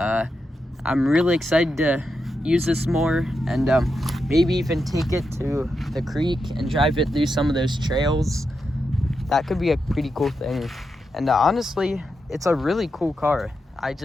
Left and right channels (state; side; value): normal; both; correlation 0.87